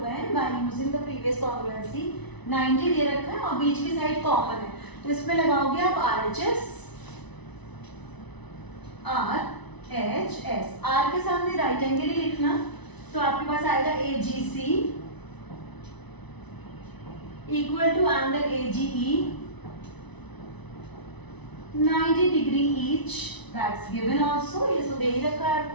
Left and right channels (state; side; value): late; right; 1.0 ms